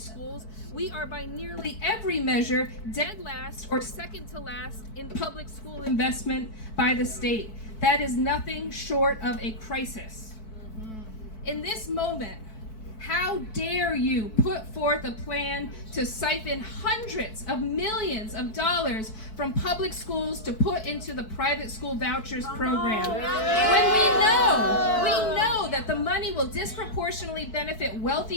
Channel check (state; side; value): late; right; 4.6 ms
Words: we are by nearly every measure dead last or second to last in public school investment by the state. That is nothing short of a crisis. In this moment, how dare you put forth a plan to siphon hundreds of millions of dollars from public schools to put into the private school vouchers program? When we know that the money will disproportionately benefit